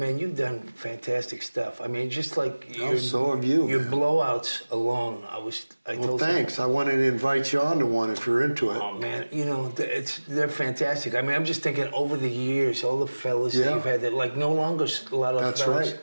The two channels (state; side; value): inverted; both; correlation -1.00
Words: you've done fantastic stuff. I mean, just like so have you. Your blowouts alone, thanks. I wanted to invite you on to one if you're into it. Oh man, they're fantastic. I mean, I'm just thinking over the years, all the fellas that you've had that like no longer a lot of That's fellas. Right.